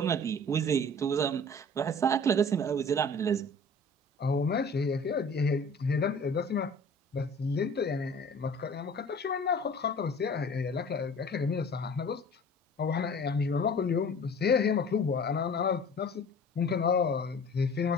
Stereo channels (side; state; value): both; normal; correlation 0.45